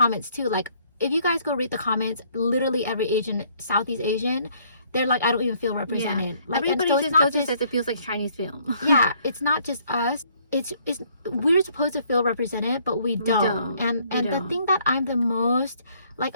too. Like, if you guys go read the comments, literally every Southeast Asian, they're like, I don't even feel represented. Like, everybody just says it feels like Chinese film. Yeah, it's not just us. It's we're supposed to feel represented, but we don't. And the thing that I'm the most like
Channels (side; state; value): both; inverted; correlation -0.64